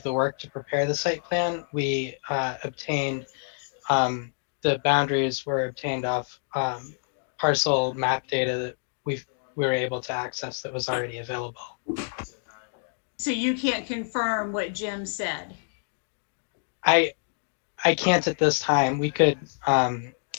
the work to prepare the site plan. We obtained the boundaries were obtained off parcel map data that we were able to access that was already available. So you can't confirm what Jim said? I can't at this time. We could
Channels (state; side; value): silent; right; digital silence